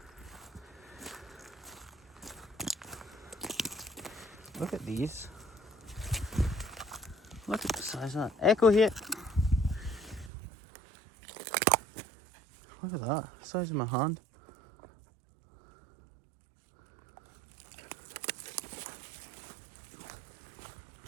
Look at these. Look at the size of that. Echo here. Look at that. The size of my hand.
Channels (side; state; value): left; drops out; at 10.3 s